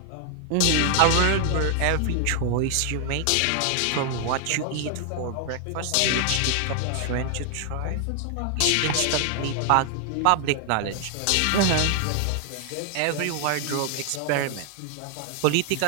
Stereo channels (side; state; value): both; different; correlation 0.00